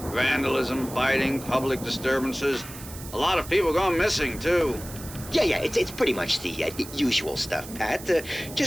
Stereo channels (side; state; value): right; noise; hiss, 14 dB below the sound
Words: Vandalism, fighting, public disturbances. A lot of people gone missing, too. Yeah, it's pretty much the usual stuff, Pat.